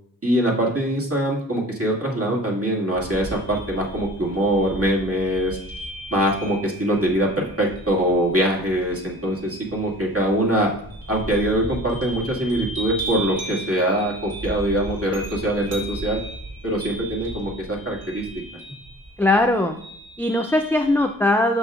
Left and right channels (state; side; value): normal; both; correlation 0.45